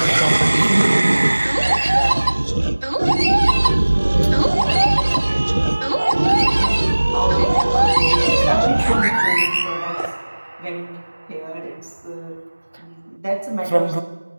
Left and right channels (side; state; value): both; inverted; correlation -1.00